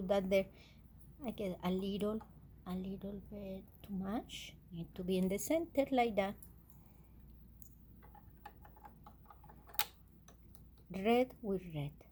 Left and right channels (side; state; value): both; identical; correlation 1.00